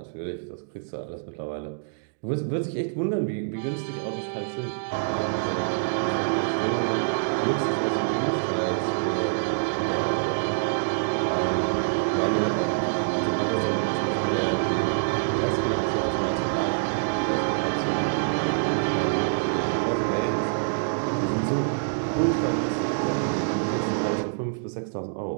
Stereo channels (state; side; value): silent; left; digital silence